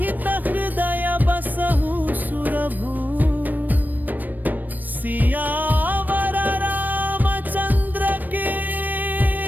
हृदय बसहु सुरभू सियावर रामचंद्र की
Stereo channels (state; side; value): late; left; 0.087 ms